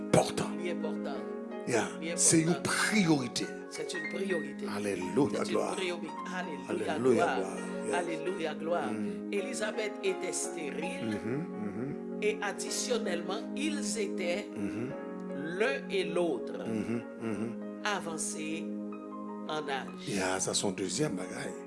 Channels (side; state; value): both; identical; correlation 1.00